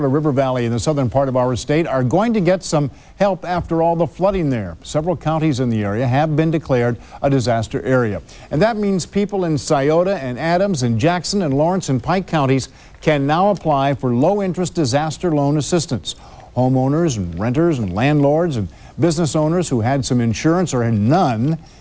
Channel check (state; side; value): identical; both; correlation 1.00